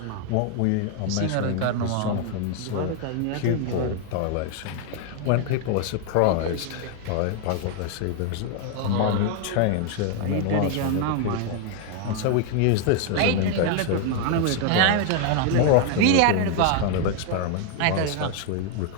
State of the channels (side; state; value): both; different; correlation 0.00